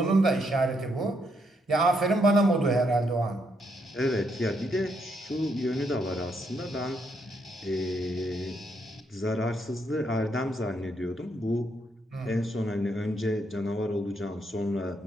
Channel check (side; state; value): both; normal; correlation 0.76